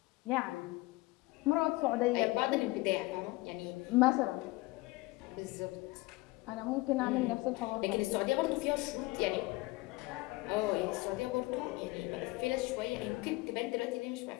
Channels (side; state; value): right; quieter; 21.8 dB